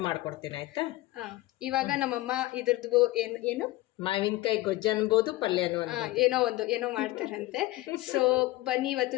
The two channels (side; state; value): right; quieter; 18.4 dB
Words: ಮಾಡ್ಕೊಡ್ತೀನಿ ಆಯ್ತಾ. ಇವಾಗ ನಮ್ಮಮ್ಮ ಇದ್ರದ್ದು ಏನು ಮಾವಿನಕಾಯಿ ಗೊಜ್ಜು ಅನ್ಬೋದು, ಪಲ್ಯನೂ ಏನೋ ಮಾಡ್ತಾರಂತೆ. ಸೊ ಬನ್ನಿ ಇವತ್ತು